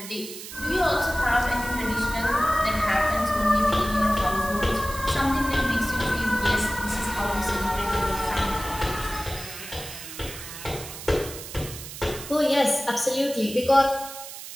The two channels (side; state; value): right; noise; hiss, 11 dB below the sound